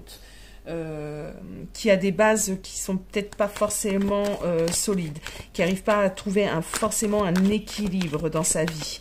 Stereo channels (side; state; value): both; identical; correlation 1.00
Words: Qui a des bases qui sont peut-être pas forcément solides, qui n'arrive pas à trouver forcément un équilibre dans sa vie.